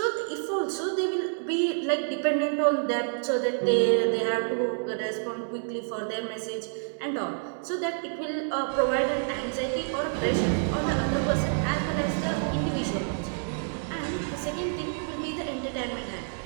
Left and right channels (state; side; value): silent; left; digital silence